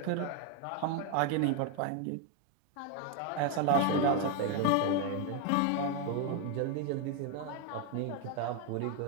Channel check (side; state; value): both; different; correlation 0.01